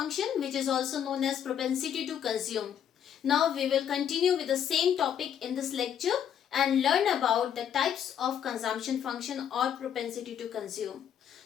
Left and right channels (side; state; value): right; quieter; 9.1 dB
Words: which is also known as propensity to consume. Now we will continue with the same topic in this lecture and learn about the types of consumption function or propensity to consume.